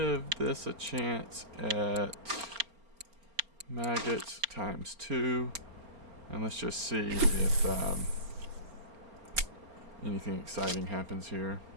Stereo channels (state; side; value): late; left; 4.3 ms